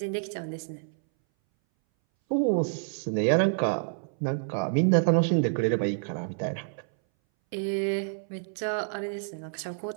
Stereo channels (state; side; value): silent; left; 59 dB below the other